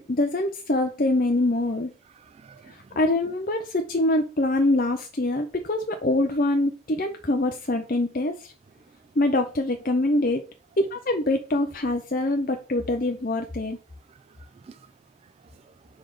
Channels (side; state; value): both; normal; correlation 0.50